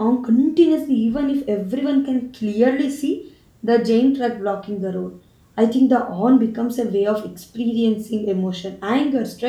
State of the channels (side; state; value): both; identical; correlation 1.00